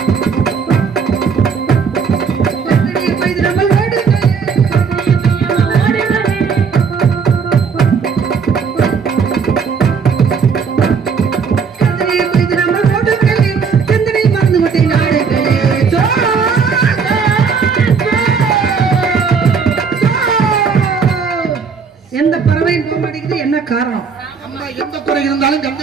காரணம் அம்மா எந்த குறை இருந்தாலும் கந்த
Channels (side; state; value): left; quieter; 5.8 dB